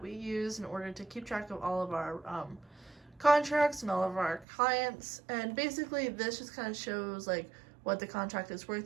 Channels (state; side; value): drops out; left; at 4.5 s